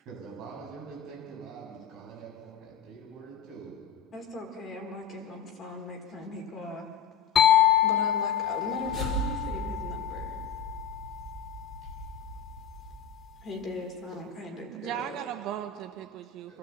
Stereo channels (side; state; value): right; quieter; 7.1 dB